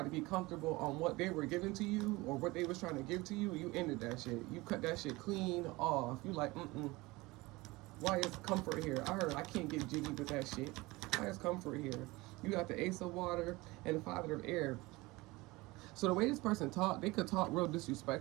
to be comfortable on what they were giving to you or what they was trying to give to you. You ended that shit. You cut that shit clean off. You like, why is comfort here? I heard I can't get jiggy with that shit. Why is comfort here? You got the Ace of Water and the Father of Air. So the way this person talked, they could talk real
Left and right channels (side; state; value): left; quieter; 21.9 dB